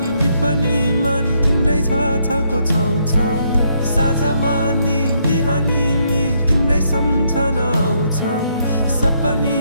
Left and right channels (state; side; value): inverted; both; correlation -0.73